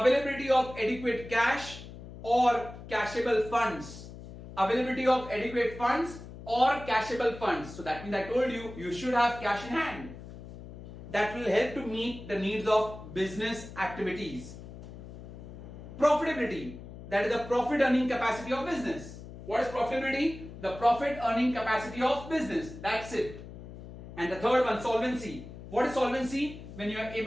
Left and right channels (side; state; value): left; noise; hum, 14 dB below the sound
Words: of adequate cash or cashable funds. Availability of adequate funds or cashable funds. So that means I told you, you should have cash in hand. That will help to meet the needs of business activities. Profitability, that is the profit earning capacity of business. What is profitability? The profit earning capacity of business. That's it. And the third one, solvency. What is solvency? When you are